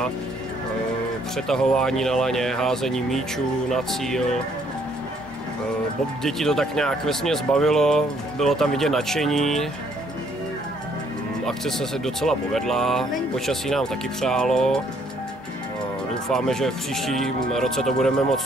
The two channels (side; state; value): both; normal; correlation 0.66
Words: přetahování na laně, házení míčů na cíl. Děti to tak nějak vesměs bavilo, bylo tam vidět nadšení. Akce se docela povedla, počasí nám taky přálo. Doufáme, že v příštím roce to budeme